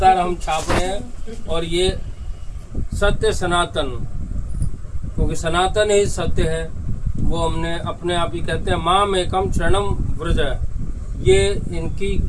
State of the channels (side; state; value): both; identical; correlation 1.00